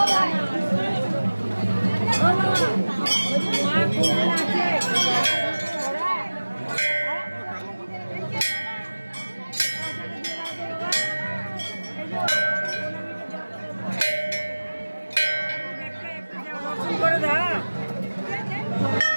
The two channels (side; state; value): both; inverted; correlation -1.00